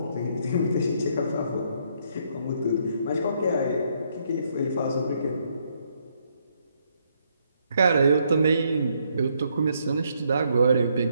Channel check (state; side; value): inverted; both; correlation -0.73